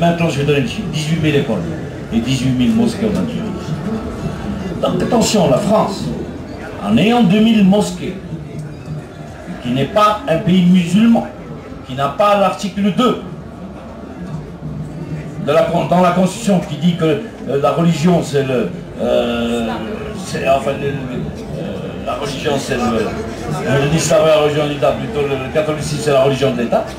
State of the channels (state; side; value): identical; both; correlation 1.00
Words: je vais donner le chiffre. 18 000 écoles et 18 000 mosquées en Algérie. Donc attention, la France, en ayant 2000 mosquées, qui n'est pas un pays musulman, qui n'a pas l'article 2 dans la Constitution qui dit que la religion c'est la religion c'est l'islam est la religion de l'État, plutôt le catholicisme c'est la religion de l'État.